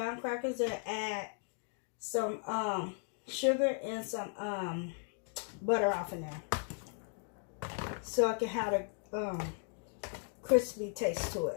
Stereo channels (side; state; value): right; silent; 54 dB below the other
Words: crackers and add some sugar and some butter off in there, so I can have a crispy taste to